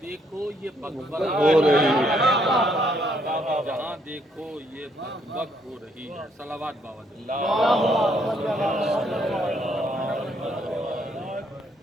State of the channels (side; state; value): both; normal; correlation 0.70